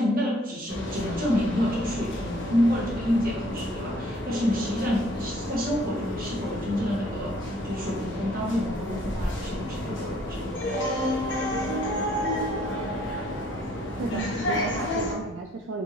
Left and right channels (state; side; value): normal; both; correlation 0.61